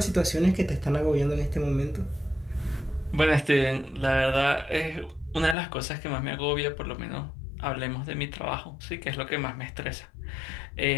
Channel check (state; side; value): drops out; right; at 5.6 s